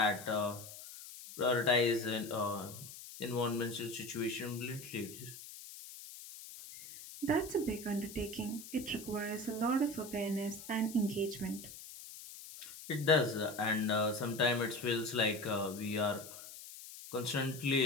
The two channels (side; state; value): left; noise; hiss, 14 dB below the sound